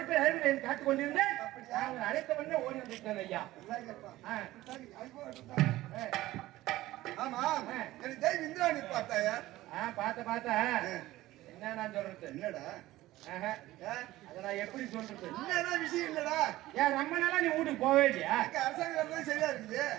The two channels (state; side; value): quieter; left; 16.6 dB